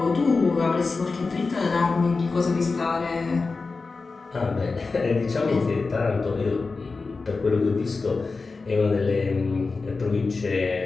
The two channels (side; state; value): right; quieter; 4.1 dB